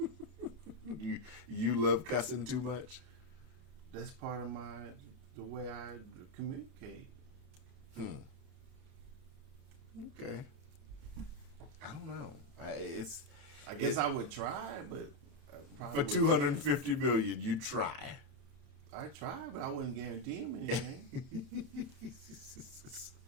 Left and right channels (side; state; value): left; late; 31 ms